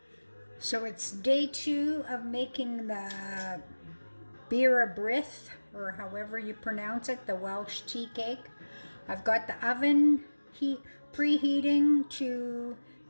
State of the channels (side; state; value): both; inverted; correlation -1.00